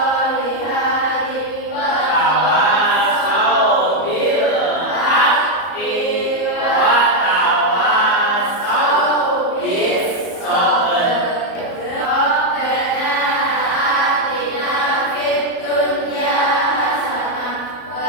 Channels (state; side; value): late; right; 34 ms